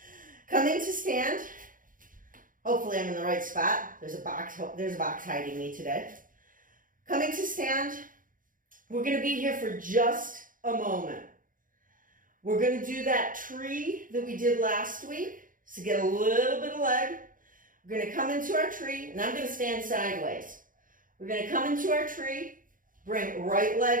Coming to stand. Hopefully I'm in the right spot. There's a box hiding me today. Coming to stand. We're going to be here for just a moment. We're going to do that tree that we did last week. So get a little bit of leg. We're going to come into our tree, and I'm going to stand sideways. We're going to come into our tree, bring right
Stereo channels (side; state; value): left; late; 0.39 ms